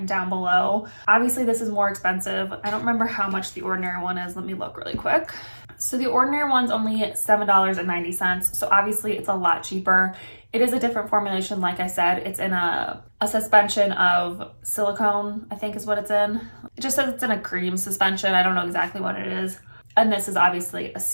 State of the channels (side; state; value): both; inverted; correlation -1.00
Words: down below. Obviously, this is more expensive. I don't remember how much the Ordinary one is. Let me look really quick. So the Ordinary one's only $7.90. So obviously, it's a lot cheaper. It is a different formulation, like I said. It's in a suspension of silicone, I think is what it's in. It just says it's in a cream suspension. I don't know exactly what it is. And this is obviously a